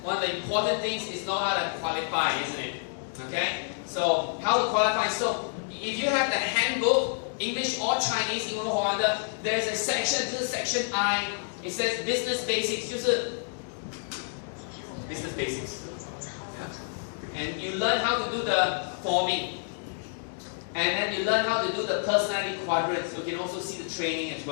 one of the important things is know how to qualify, isn't it? Okay. So how to qualify? So if you have the handbook, English or Chinese, 英文或华的, there's a section. This is section I. It says business basics, 就是 business basics. And you learn how to do the forming. And then you learn how to do the personality quadrants. You can also see the training as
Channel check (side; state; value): right; silent; digital silence